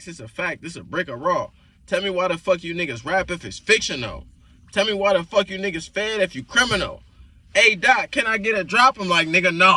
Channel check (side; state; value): both; identical; correlation 1.00